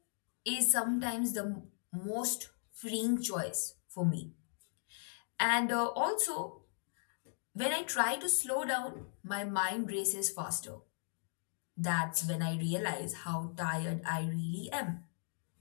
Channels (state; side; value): silent; right; digital silence